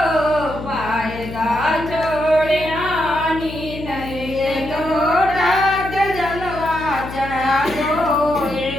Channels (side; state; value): left; noise; hum, 11 dB below the sound